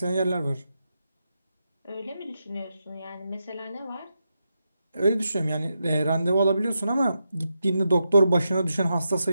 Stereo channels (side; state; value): both; inverted; correlation -0.86